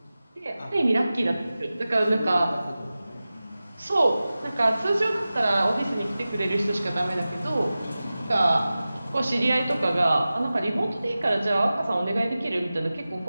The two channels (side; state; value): both; inverted; correlation -0.96